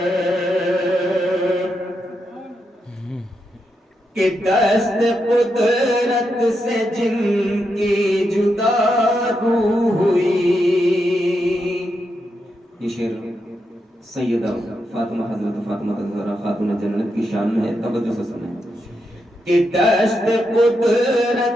کہ دست قدرت سے جن کی جدا روح ہوئی. یہ شعر سیدہ فاطمہ حضرت فاطمہ الزہرا خاتون جنت کی شان میں ہے، توجہ سے سنیں. کہ دست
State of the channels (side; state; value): both; normal; correlation 0.84